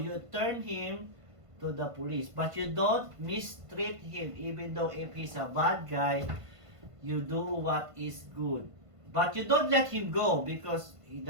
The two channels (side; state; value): left; late; 1.5 ms